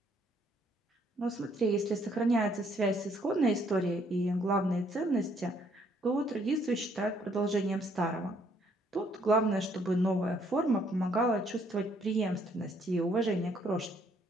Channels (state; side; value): normal; both; correlation 0.67